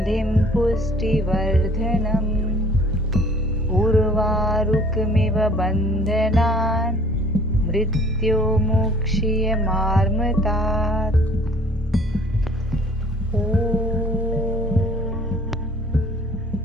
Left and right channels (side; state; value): both; normal; correlation 0.54